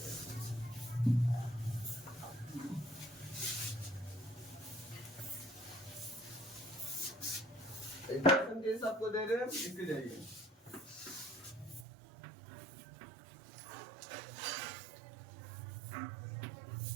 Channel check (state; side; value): drops out; left; at 11.9 s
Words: आपको दे रहे हैं, लिखते जाइए।